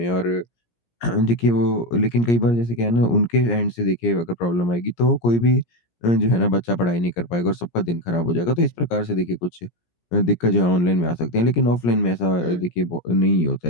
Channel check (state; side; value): late; right; 17 ms